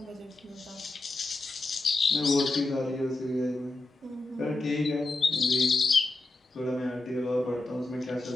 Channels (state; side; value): quieter; right; 3.0 dB